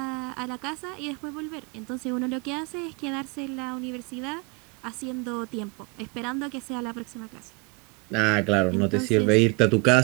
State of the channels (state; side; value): quieter; left; 29.3 dB